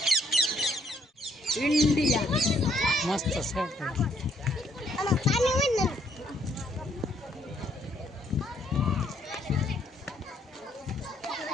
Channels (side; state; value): both; normal; correlation 0.68